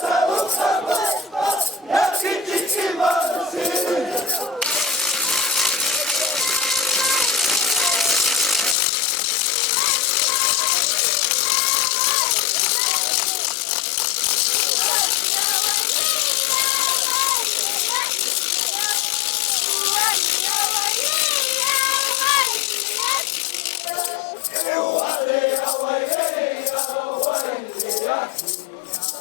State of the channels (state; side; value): drops out; right; at 8.8 s